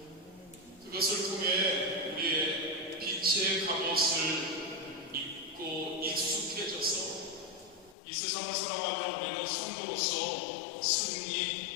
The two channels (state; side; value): drops out; right; at 8.0 s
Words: 그것을 통해 우리의 빛의 갑옷을 입고 익숙해져서 이 세상을 살아가며 우리는 성도로서